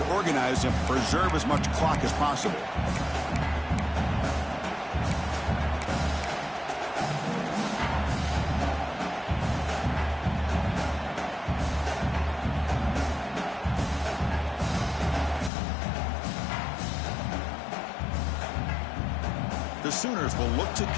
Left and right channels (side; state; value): right; drops out; at 15.5 s